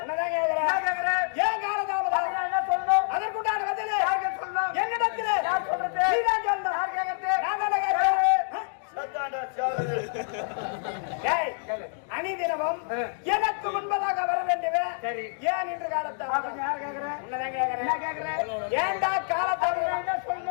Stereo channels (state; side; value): silent; right; digital silence